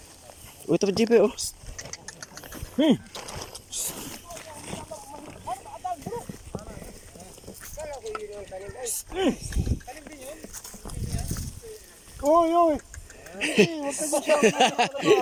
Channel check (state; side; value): identical; both; correlation 1.00